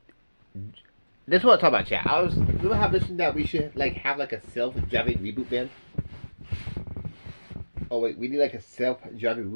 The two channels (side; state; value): both; inverted; correlation -1.00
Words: this is what I'm talking about, chat. We don't have this that we should like have like a self-driving reboot van. Oh wait, we need like a self-driving